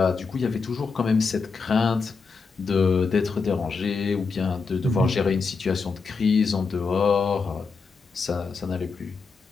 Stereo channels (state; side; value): quieter; right; 4.8 dB